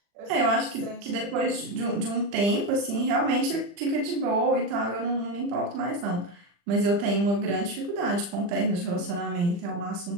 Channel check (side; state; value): left; late; 40 ms